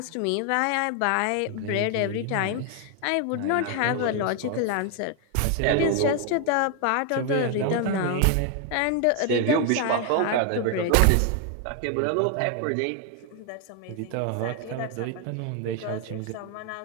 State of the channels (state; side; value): different; both; correlation 0.00